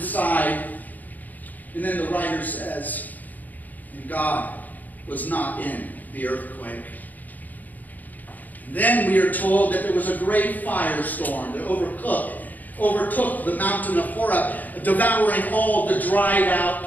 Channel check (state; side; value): late; right; 0.082 ms